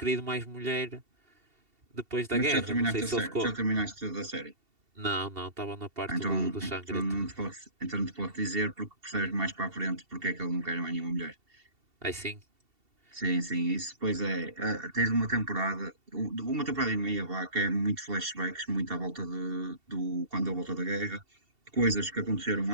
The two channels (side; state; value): left; late; 2.7 ms